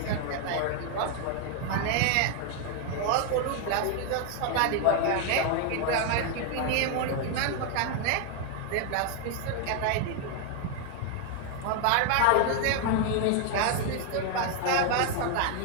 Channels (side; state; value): both; different; correlation 0.01